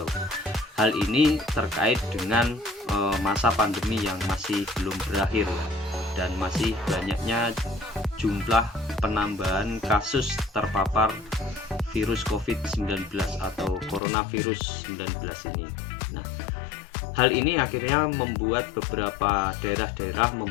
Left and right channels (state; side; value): drops out; right; at 14.0 s